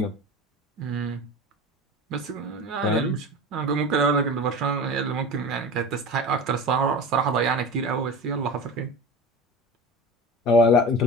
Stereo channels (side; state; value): both; normal; correlation 0.33